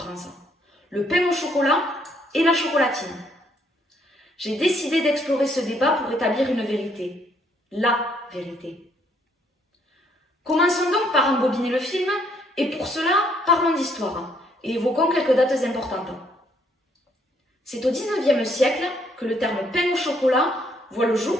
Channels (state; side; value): normal; both; correlation 0.68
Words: le pain au chocolat et la chocolatine. J'ai décidé d'explorer ce débat pour établir une vérité, la vérité. Commençons donc par embobiner le film et pour cela, parlons d'histoire et évoquons quelques dates importantes. C'est au XIXe siècle que le terme pain au chocolat voit le